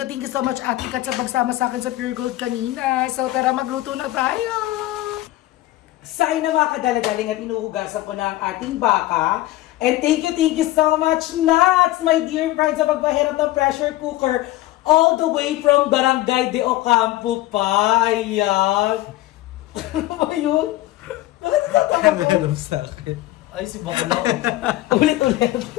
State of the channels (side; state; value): right; quieter; 16.6 dB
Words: you so much, Ate Kat, sa pagsama sa akin sa Pure Gold kanina. So tara, magluto na tayo! Sa inyo mga kadaladaling at inuhugasan ko na ang ating baka. And thank you so much, Nats, my dear friends, sa pagpahiram ng pressure cooker all the way from Barangay de Ocampo pa. Ayan. Ano ba yun? Bakit natatawa ko? Sa akin. Ay, si Bakulaw. Ulit-ulit.